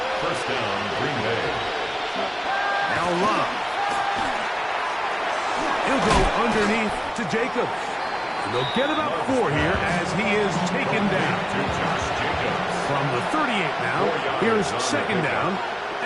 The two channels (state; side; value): identical; both; correlation 1.00